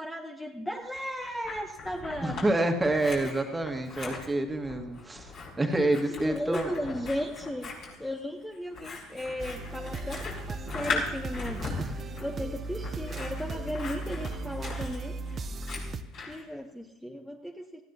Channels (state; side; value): normal; both; correlation 0.84